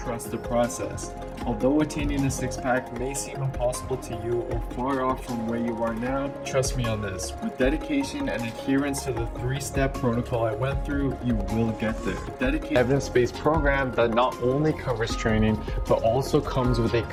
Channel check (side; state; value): both; identical; correlation 1.00